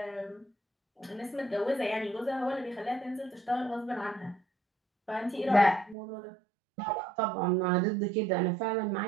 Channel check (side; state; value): left; drops out; at 6.0 s